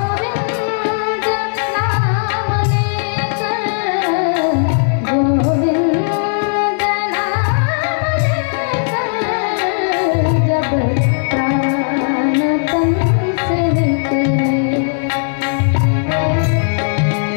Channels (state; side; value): silent; right; digital silence